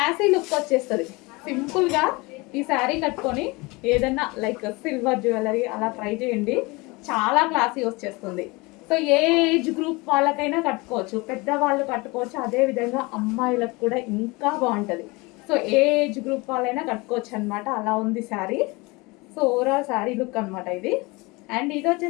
లుక్ వచ్చేస్తుంది. సింపుల్గా ఈ శారీ కట్టుకొని ఏదన్నా లైక్ సిల్వర్ జ్యువెలరీ అలా ట్రై చేయండి, చాలా క్లాసీ వచ్చేస్తుంది. సో ఏ ఏజ్ గ్రూప్ వాళ్ళకైనా కట్టుకోవచ్చు, పెద్దవాళ్ళు కట్టుకోవచ్చు, అదేవిధంగా అమ్మాయిలకు కూడా ఇంకా బాగుంటుంది. సో ఏ ఏజ్ గ్రూప్ వాళ్ళైనా కట్టుకోవచ్చు అనమాట, అలా ఉంది sari. So overall sari look అనమాట ఇది. అండ్ ఇది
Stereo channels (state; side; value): quieter; right; 24.9 dB